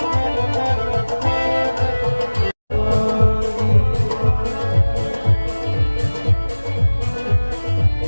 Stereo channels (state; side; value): inverted; both; correlation -1.00